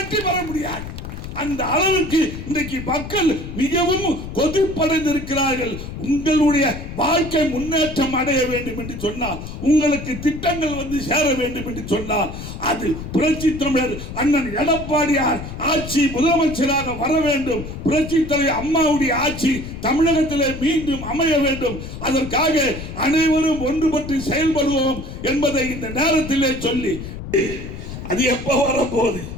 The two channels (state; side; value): noise; left; rumble, 9 dB below the sound